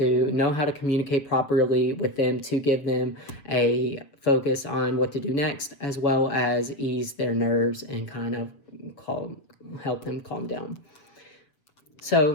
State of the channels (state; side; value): late; right; 7.5 ms